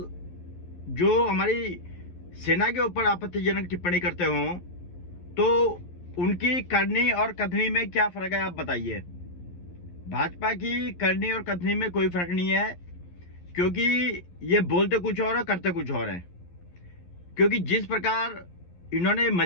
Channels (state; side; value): late; right; 11 ms